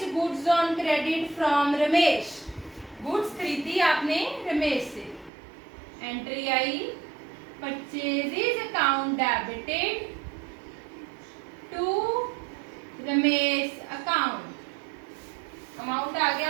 goods on credit from Ramesh. Goods खरीदी आपने रमेश से। एंट्री आई purchases account debited to Ramesh account. Amount आ गया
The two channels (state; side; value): drops out; left; at 5.3 s